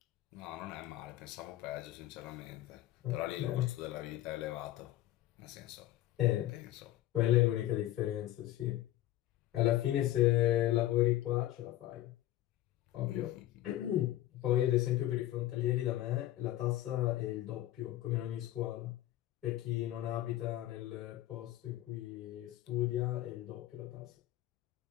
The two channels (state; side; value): quieter; right; 14.5 dB